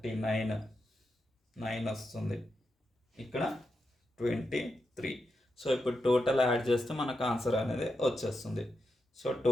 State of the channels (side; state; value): both; normal; correlation 0.87